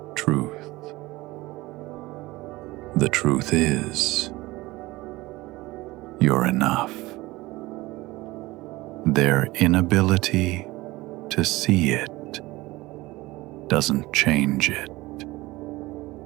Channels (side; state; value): left; quieter; 20.0 dB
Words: truth. The truth is, you're enough. Their inability to see it doesn't change it.